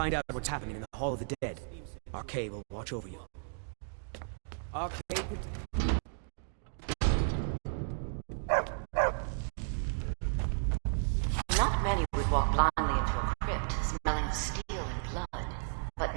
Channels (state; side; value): silent; left; digital silence